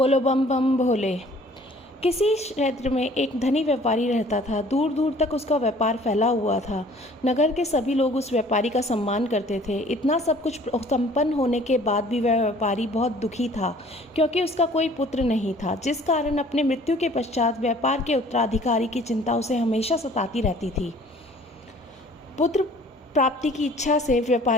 बम बम भोले। किसी क्षेत्र में एक धनी व्यापारी रहता था। दूर दूर तक उसका व्यापार फैला हुआ था। नगर के सभी लोग उस व्यापारी का सम्मान करते थे। इतना सब कुछ संपन्न होने के बाद भी वह व्यापारी बहुत दुखी था, क्योंकि उसका कोई पुत्र नहीं था, जिस कारण अपने मृत्यु के पश्चात व्यापार के उत्तराधिकारी की चिंता उसे हमेशा सताती रहती थी। पुत्र प्राप्ति की इच्छा से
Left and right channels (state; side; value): normal; both; correlation 0.53